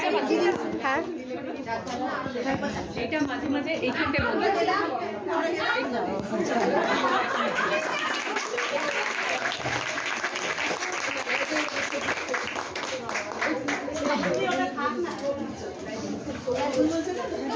হ্যাঁ এটা মাঝে মাঝে এইখানটা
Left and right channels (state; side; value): identical; both; correlation 1.00